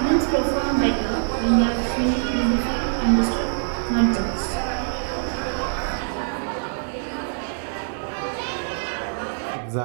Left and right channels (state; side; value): silent; left; digital silence